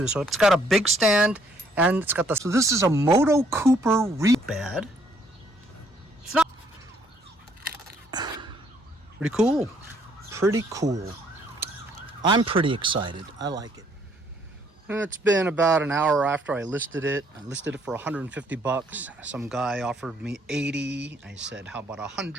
So it's got a big stand and it's got the. So this is a Moto Cooper rebad. It's not pretty cool. Pretty cool. I'm pretty excited. I like it. It's been about an hour after I listed it. I listed it for 150 bucks. Some guy offered me 80. I said, how about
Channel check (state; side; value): normal; both; correlation 0.66